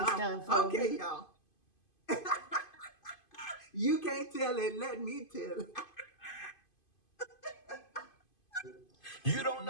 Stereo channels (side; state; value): right; late; 2.5 ms